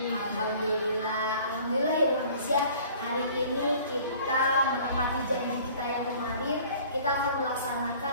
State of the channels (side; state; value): both; inverted; correlation -0.50